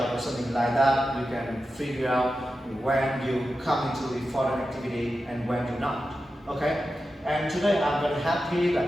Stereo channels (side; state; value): both; normal; correlation 0.91